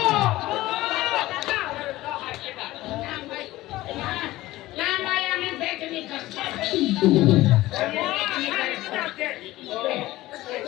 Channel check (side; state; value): right; quieter; 17.2 dB